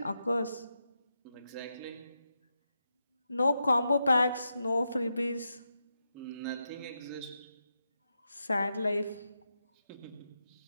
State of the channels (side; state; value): both; inverted; correlation -0.86